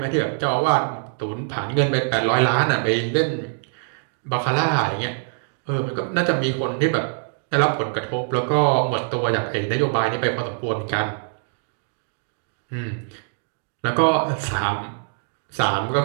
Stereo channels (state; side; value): silent; left; digital silence